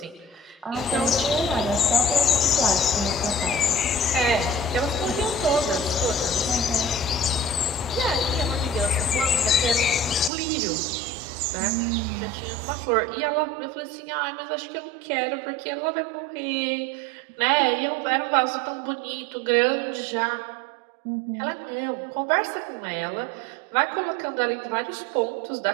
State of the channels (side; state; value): left; drops out; at 10.3 s